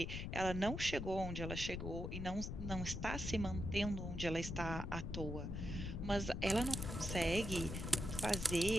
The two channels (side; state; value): left; noise; rumble, 4 dB below the sound